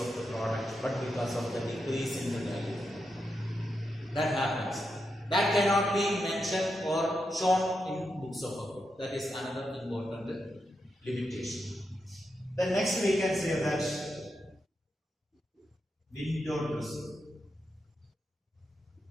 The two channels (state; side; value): normal; both; correlation 0.85